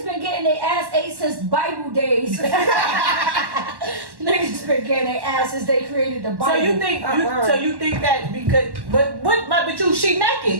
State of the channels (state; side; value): late; left; 1.1 ms